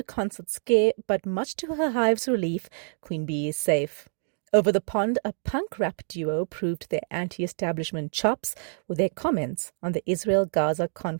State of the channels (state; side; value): silent; left; digital silence